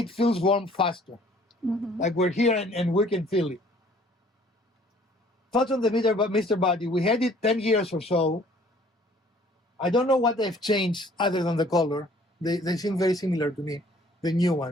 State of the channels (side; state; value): both; normal; correlation 0.57